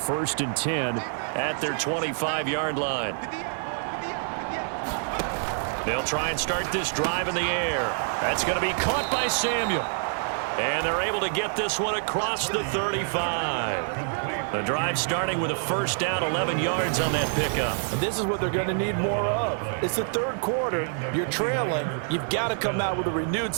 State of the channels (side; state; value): left; silent; digital silence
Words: and 10 at their 25-yard line. They'll try and start this drive in the air. That's going to be caught by Samuel. And they're able to get this one across the 35. The drive starting with a first down, 11 yards on that pickup. And this is what they're going to need more of. It's the third quarter. You're trailing. You've got to come out with a renewed